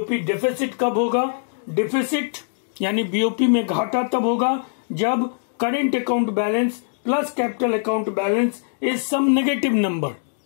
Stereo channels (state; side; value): silent; right; digital silence